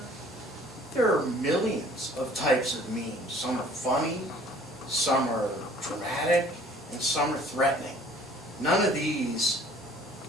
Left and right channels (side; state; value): both; normal; correlation 0.53